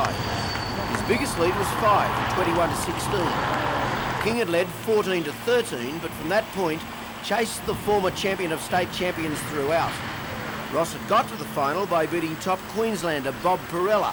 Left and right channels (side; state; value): both; identical; correlation 1.00